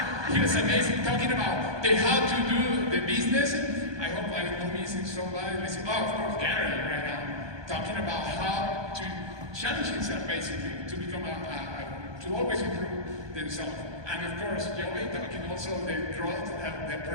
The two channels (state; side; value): late; left; 1.2 ms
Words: he was amazing talking about how to do the business. I hope I'm not missing somebody. Oh, of course, Gary right now, talking about how to challenge himself basically to become to always improve themselves. And of course, Geoge talking also the growth, the